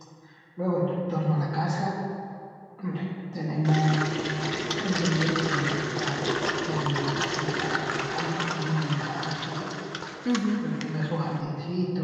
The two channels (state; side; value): identical; both; correlation 1.00